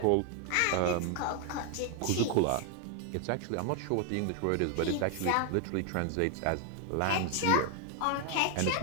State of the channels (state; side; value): different; both; correlation 0.01